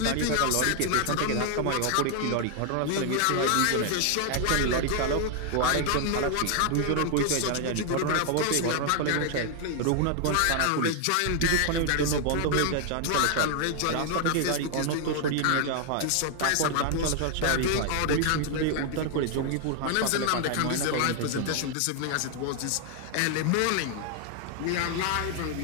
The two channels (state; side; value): different; both; correlation 0.00